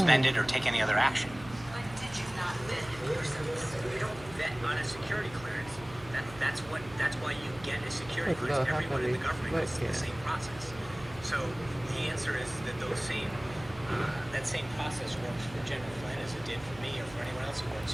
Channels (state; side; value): noise; right; hum, 17 dB below the sound